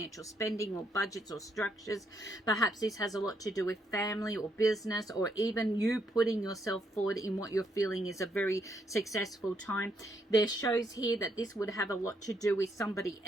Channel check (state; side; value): normal; both; correlation 0.75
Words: spending or budgets or structures. Perhaps this has a lot to do with family or business, or even you putting yourself forward in what you're feeling is a very successful time. There shows here that this would have a lot to do with somebody